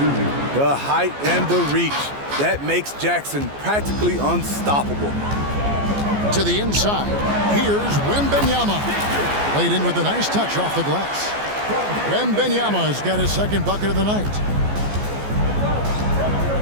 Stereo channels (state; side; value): late; left; 14 ms